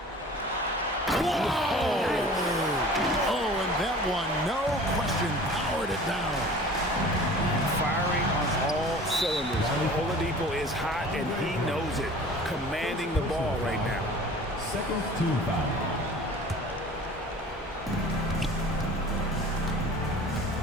Whoa! Oh, and that one, no question, powered it down. Firing on all cylinders. Oladipo is hot, and he knows it. Commanding the ball right now. Second team foul.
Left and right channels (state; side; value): normal; both; correlation 0.44